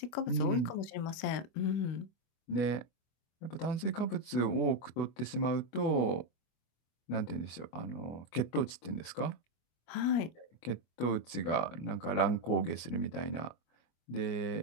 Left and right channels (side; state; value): right; late; 24 ms